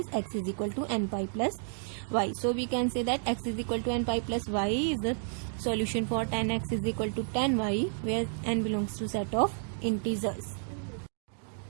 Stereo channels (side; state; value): left; silent; digital silence